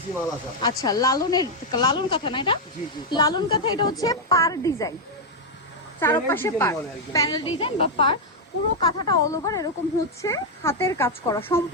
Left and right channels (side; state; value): both; normal; correlation 0.00